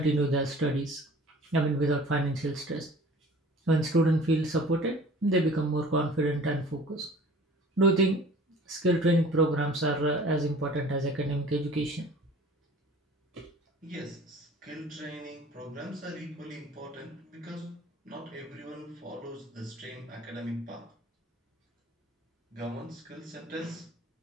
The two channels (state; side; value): normal; both; correlation 0.46